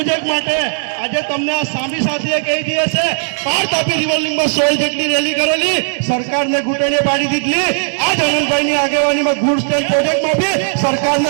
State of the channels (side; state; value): left; silent; 69 dB below the other